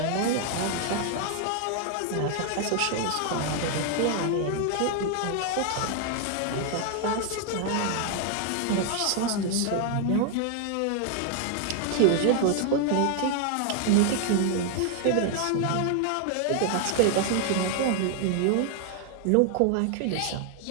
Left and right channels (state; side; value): different; both; correlation 0.00